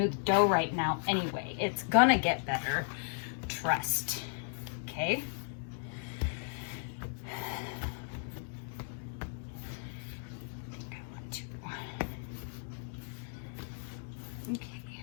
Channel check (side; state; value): right; silent; 54 dB below the other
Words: dough right now anyway. It's gonna get better. Trust. Okay?